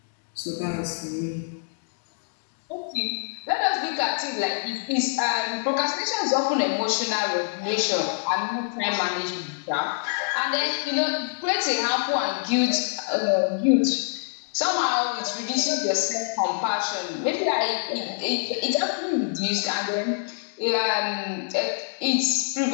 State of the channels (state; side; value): silent; right; digital silence